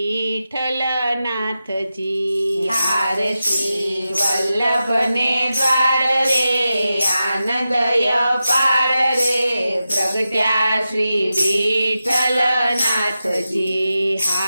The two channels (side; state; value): both; inverted; correlation -0.91